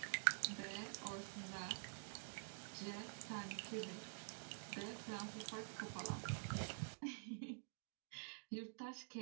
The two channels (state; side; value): silent; left; digital silence